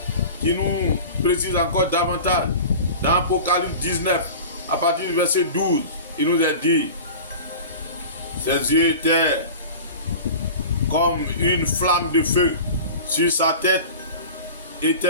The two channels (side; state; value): both; inverted; correlation -0.36